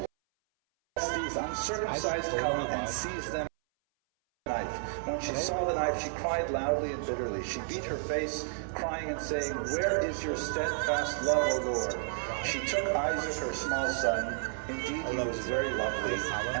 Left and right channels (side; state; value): left; silent; 57 dB below the other